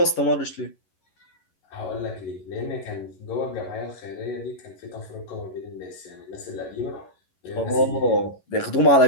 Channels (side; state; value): right; late; 11 ms